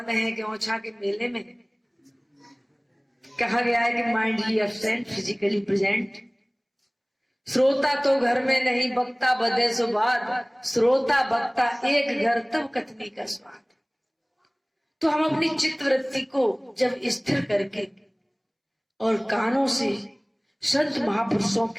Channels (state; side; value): identical; both; correlation 1.00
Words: में है कि ओछा के मेले में। कहा गया है कि माइंडली एब्सेंट फिजिकली प्रेजेंट। श्रोता तो घर में नहीं, बक्ता बधे सो बाद, श्रोता बक्ता एक घर तब कथनी का स्वाद। तो हम अपनी चित्त वृत्ति को जब स्थिर करके और कानों से संत महापुरुषों